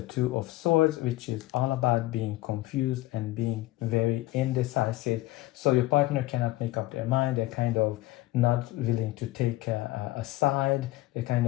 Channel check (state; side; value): quieter; right; 18.0 dB